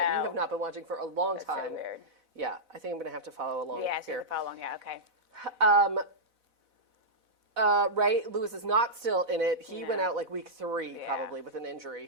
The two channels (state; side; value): late; left; 4.0 ms